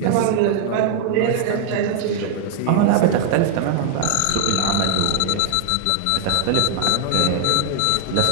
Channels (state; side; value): different; both; correlation 0.00